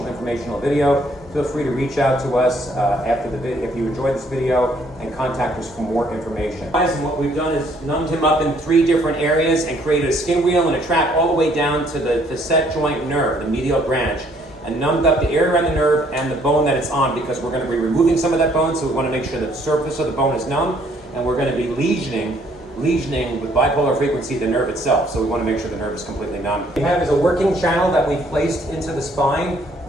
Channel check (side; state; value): both; normal; correlation 0.65